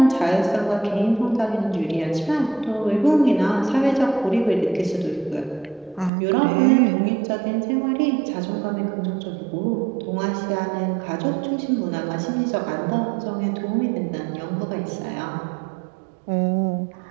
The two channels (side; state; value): left; drops out; at 6.1 s